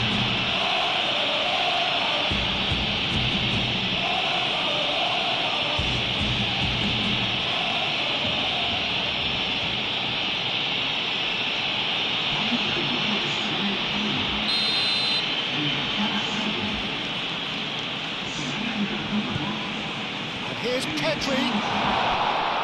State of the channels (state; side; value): identical; both; correlation 1.00